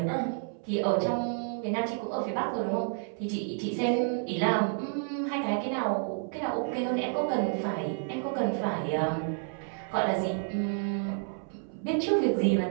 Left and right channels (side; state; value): left; silent; 58 dB below the other